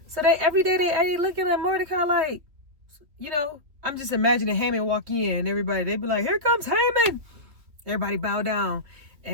So every day they looking at Mordecai like, I'm just imagining Haman walk in, everybody, they be like, here comes Haman. Everybody bow down.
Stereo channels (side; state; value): left; late; 3.1 ms